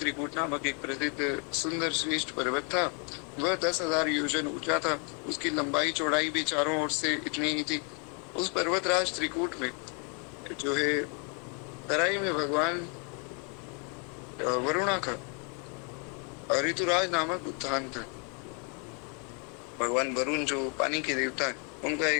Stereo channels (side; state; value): right; quieter; 37.0 dB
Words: नामक एक प्रसिद्ध सुंदर श्रेष्ठ पर्वत था। वह 10,000 योजन ऊंचा था। उसकी लंबाई चौड़ाई भी चारों ओर से इतनी ही थी। उस पर्वतराज त्रिकूट में जो है तराई में भगवान वरुणा का ऋतुराज नामक उद्यान था। भगवान वरुण जो पानी के देवता है, उनका